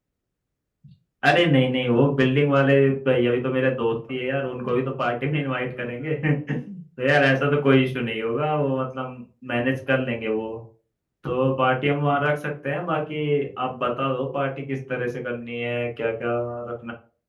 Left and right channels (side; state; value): both; identical; correlation 1.00